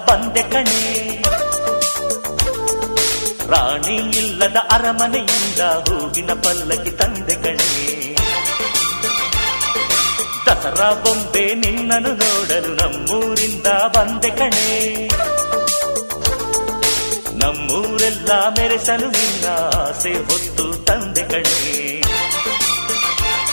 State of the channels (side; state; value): both; inverted; correlation -1.00